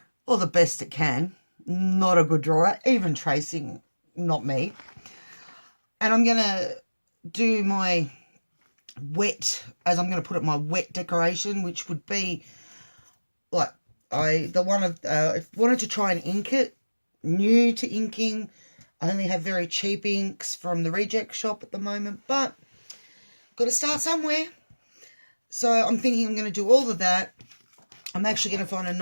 or the best it can. Not a good drawer, even tracing, not me. And I'm going to do my wet, as I'm going to put it, my wet decoration, which would be like, I wanted to try and ink it, new to inking. I only have very cheap inks from the reject shop at the moment, but got to start somewhere. So I'm thinking I'm going to do all of that. I'm actually going to find a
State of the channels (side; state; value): both; inverted; correlation -1.00